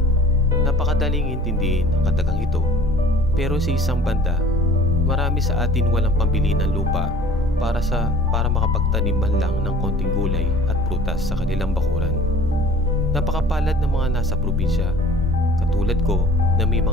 Napakadaling intindihin ang katagang ito, pero sa isang banda, marami sa atin walang pambili ng lupa para makapagtanim man lang ng konting gulay at prutas sa kanilang bakuran. Napakapalad ng mga nasa probinsya, katulad ko na may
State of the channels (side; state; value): both; normal; correlation 0.48